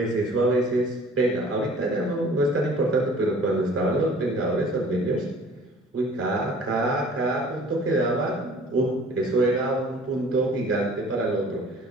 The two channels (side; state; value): both; normal; correlation 0.50